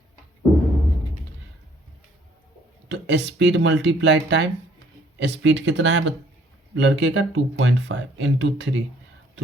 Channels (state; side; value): normal; both; correlation 0.62